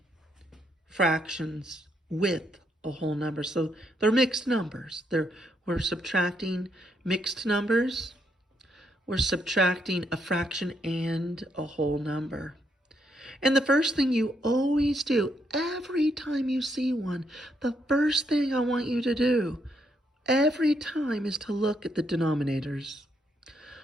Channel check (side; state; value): both; normal; correlation 0.76